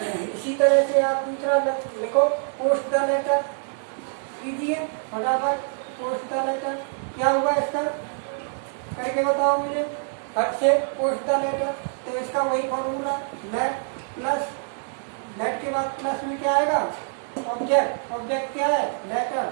इसी तरह से आप दूसरा लिखो, पोस्ट द लेटर कीजिए फटाफट। पोस्ट द लेटर क्या हुआ इसका? करके बताओ मुझे फट से। पोस्ट द लेटर, तो इसका वही फॉर्मूला लेट प्लस, लेट के बाद प्लस में क्या आएगा? ऑब्जेक्ट। ऑब्जेक्ट क्या है? Letter,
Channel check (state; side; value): silent; left; digital silence